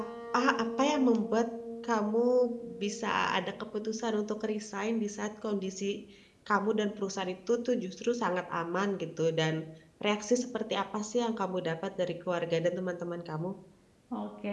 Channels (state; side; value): identical; both; correlation 1.00